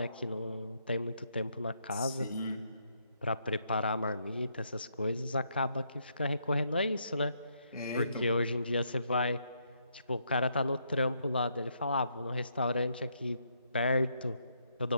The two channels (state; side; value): inverted; both; correlation -0.75